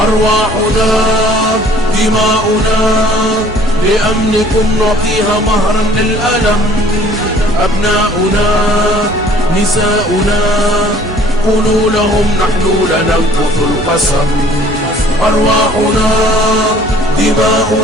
دماؤنا لأمنكم نعطيها مهرا للألم. أبناؤنا نساؤنا قولوا لهم نحن لننقض القسم. أرواحنا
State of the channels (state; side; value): normal; both; correlation 0.54